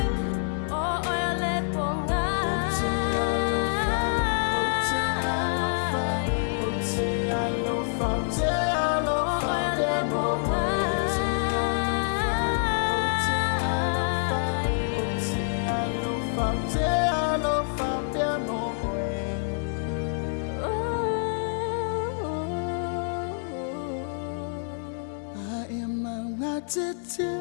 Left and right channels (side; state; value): right; silent; digital silence